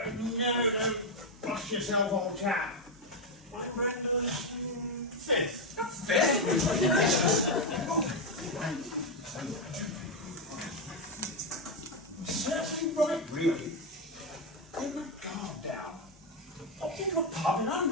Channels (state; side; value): normal; both; correlation 0.05